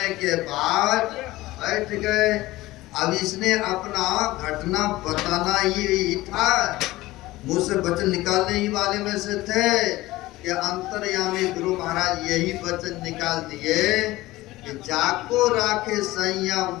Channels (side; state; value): right; quieter; 18.1 dB